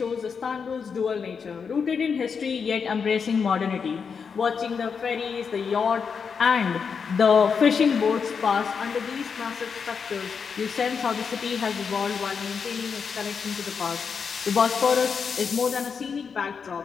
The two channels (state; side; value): quieter; right; 6.0 dB